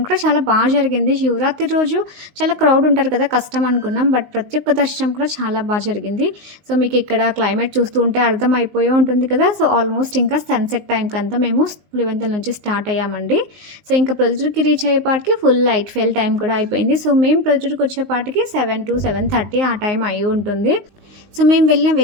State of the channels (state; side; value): late; left; 19 ms